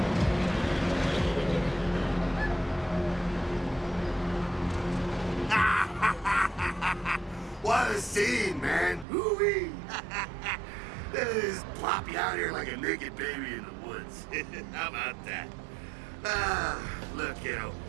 What a scene, man. Woo-wee. They just plop you out here like a naked baby in the woods. How about that? Look, kiddo,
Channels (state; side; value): drops out; left; at 9.1 s